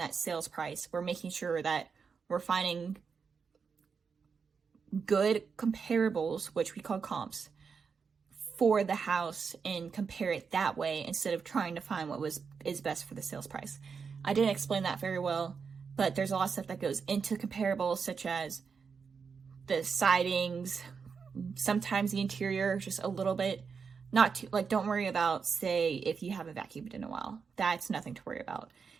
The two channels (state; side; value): quieter; left; 5.7 dB